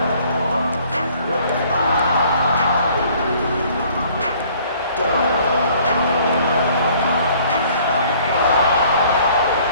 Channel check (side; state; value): both; inverted; correlation -0.57